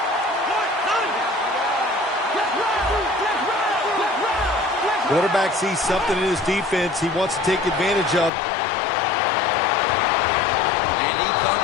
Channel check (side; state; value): right; drops out; at 8.3 s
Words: Quarterback sees something in his defense he wants to take advantage of. And he